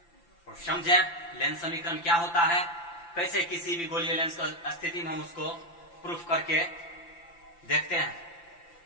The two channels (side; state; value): right; late; 5.9 ms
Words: और समझें लेंस समीकरण क्या होता है, कैसे किसी भी गोलीय लेंस की स्थिति में हम उसको प्रूफ करके देखते हैं।